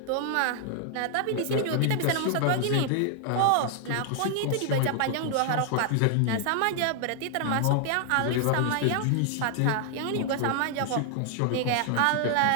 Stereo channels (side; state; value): both; different; correlation 0.00